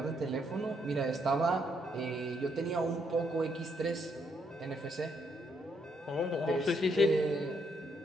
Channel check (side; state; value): both; normal; correlation 0.74